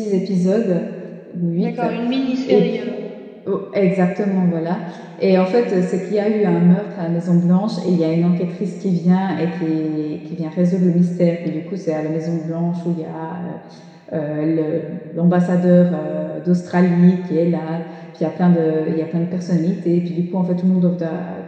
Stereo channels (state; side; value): identical; both; correlation 1.00